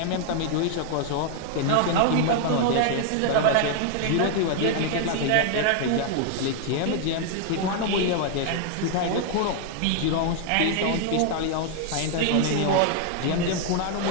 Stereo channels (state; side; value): different; both; correlation 0.00